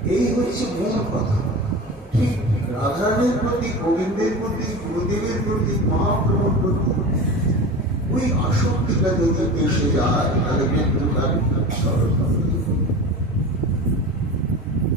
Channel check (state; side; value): normal; both; correlation 0.32